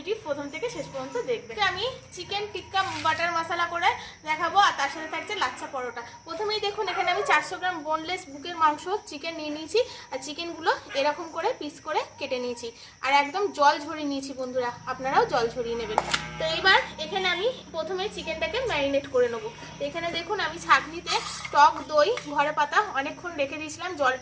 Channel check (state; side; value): identical; both; correlation 1.00